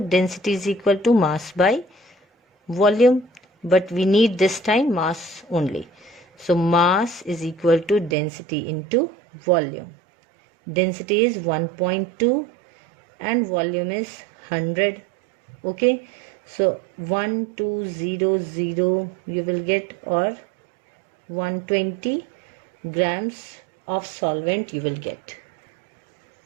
is equal to mass by volume, but we need this time mass only. So mass is equal to density into volume. Density is 1.2 and volume is 100. Okay, so 1200 you will get, or 120 grams of solvent you will get.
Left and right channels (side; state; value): left; drops out; at 8.2 s